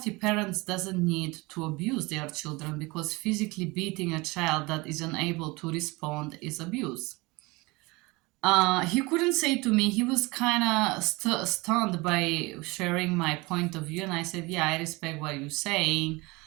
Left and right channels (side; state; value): left; quieter; 24.1 dB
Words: parent doesn't need to abuse their children, because physically beating a child that is unable to respond is abuse. He couldn't say to me. He was kind of stunned by sharing my point of view, and I said, "Yeah, I respect what you're saying,